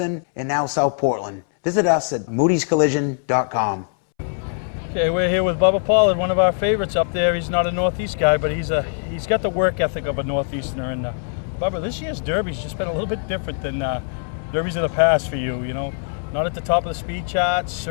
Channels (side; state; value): right; silent; 64 dB below the other